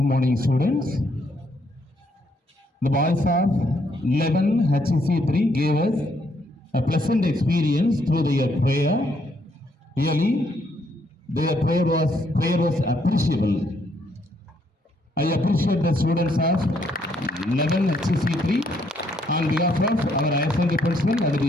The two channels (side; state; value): both; normal; correlation 0.72